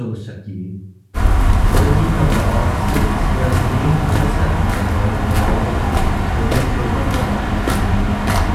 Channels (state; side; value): identical; both; correlation 1.00